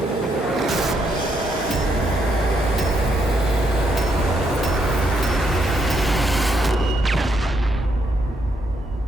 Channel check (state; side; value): normal; both; correlation 0.76